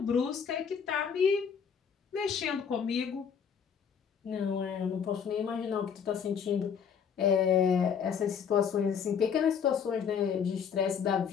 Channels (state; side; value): quieter; right; 7.1 dB